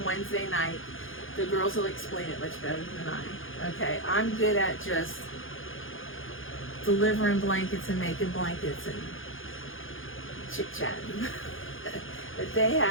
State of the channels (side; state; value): right; late; 0.58 ms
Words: Wednesday night. The girls will explain it much better than I. Okay, I'm good at just delivering blankets and making blankets and chit-chatting. But